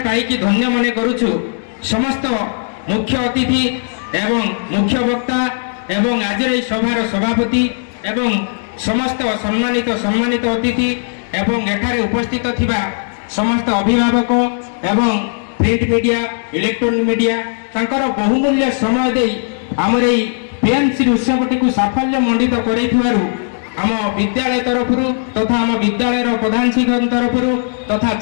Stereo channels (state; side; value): silent; right; 68 dB below the other